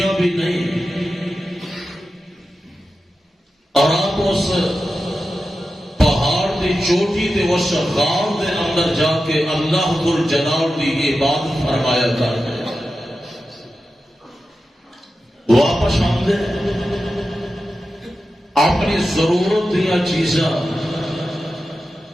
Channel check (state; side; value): normal; both; correlation 0.92